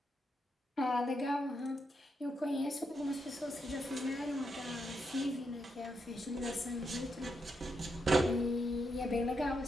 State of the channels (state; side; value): normal; both; correlation 0.82